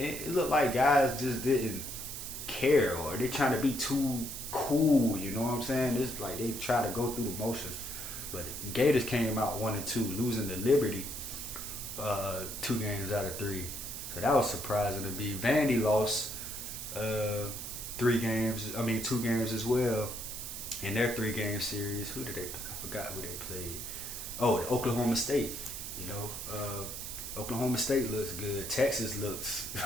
looked like guys just didn't care, or they trying to be too cool. You know what I'm saying? It's like they try to go through the motions. But Gators came out 1-2, losing to Liberty 2 games out of 3. So that was surprising to me. Vandy lost 2 games as well in their 3-game series. I forgot who they played. Oh, Oklahoma State. You know, Oklahoma State looks good. Texas looks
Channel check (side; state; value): right; noise; hiss, 7 dB below the sound